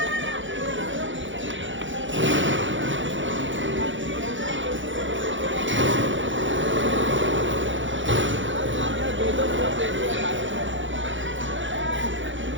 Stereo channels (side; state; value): left; late; 0.56 ms